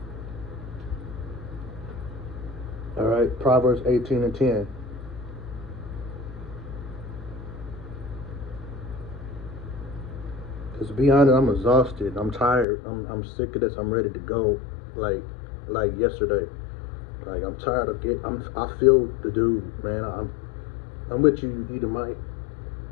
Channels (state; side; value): drops out; right; at 12.7 s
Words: All right, Proverbs 18:10. Because to be honest, I'm exhausted. I'm tired. I'm sick of this. I'm ready to go. Like yesterday. Like I'm tired of I feel the dude, man. I'm with you, Edomite.